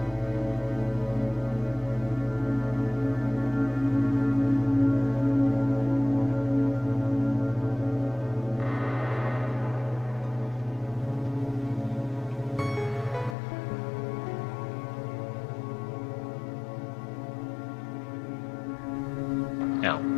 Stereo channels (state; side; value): drops out; right; at 13.4 s